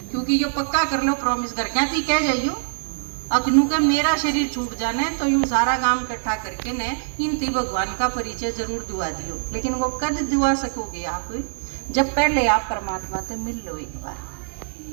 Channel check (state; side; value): silent; left; digital silence